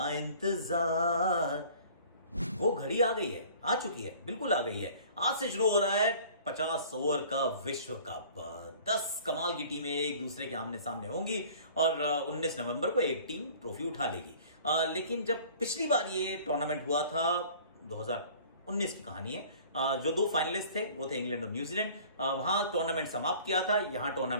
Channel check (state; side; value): inverted; both; correlation -0.49